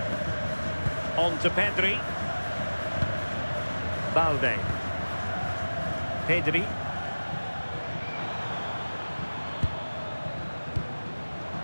On to Pedri. Balde. Pedri.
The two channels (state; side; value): inverted; both; correlation -1.00